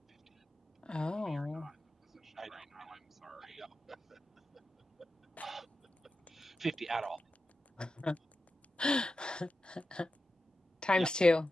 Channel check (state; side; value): normal; both; correlation 0.92